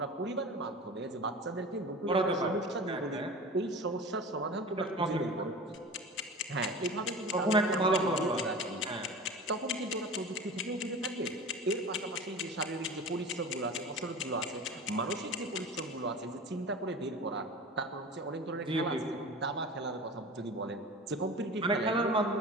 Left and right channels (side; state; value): both; normal; correlation 0.35